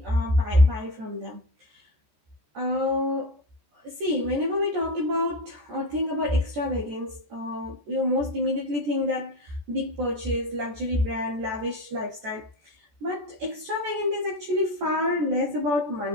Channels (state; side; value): late; left; 14 ms